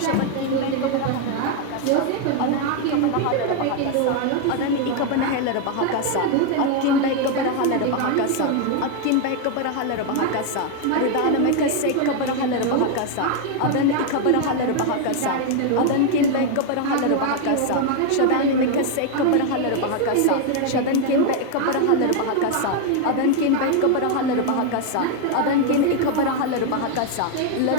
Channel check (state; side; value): different; both; correlation 0.01